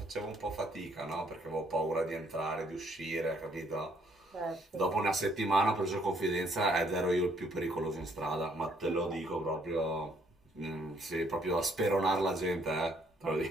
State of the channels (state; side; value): normal; both; correlation 0.67